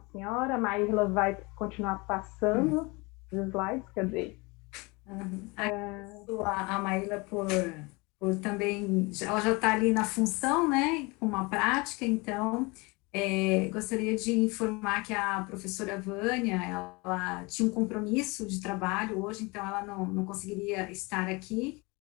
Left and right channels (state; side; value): quieter; right; 26.4 dB